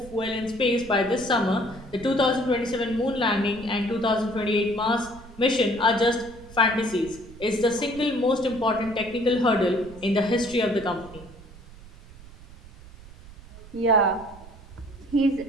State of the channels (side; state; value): right; noise; rumble, 19 dB below the sound